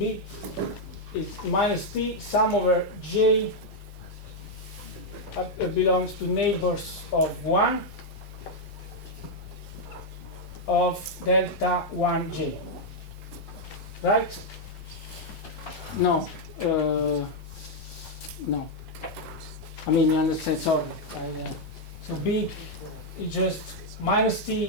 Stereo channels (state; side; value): late; left; 1.2 ms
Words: is minus T sum over J belongs to neighbors of 1 of delta 1J. Right? No. No. I mean, you understand, sorry. So B is just minus